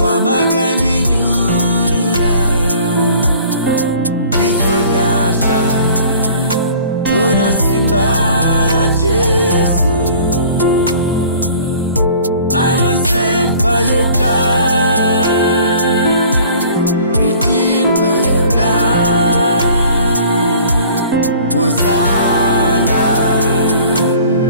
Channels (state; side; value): inverted; both; correlation -0.50